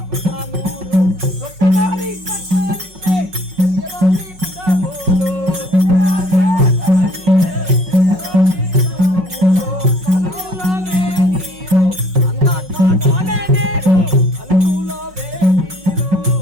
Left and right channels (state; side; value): late; left; 5.4 ms